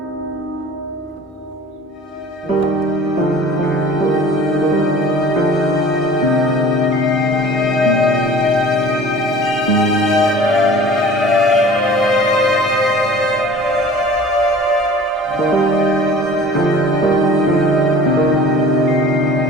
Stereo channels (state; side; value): normal; both; correlation 0.44